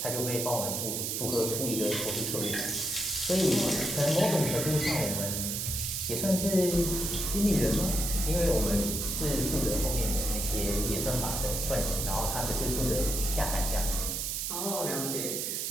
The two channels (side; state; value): right; noise; hiss, 2 dB below the sound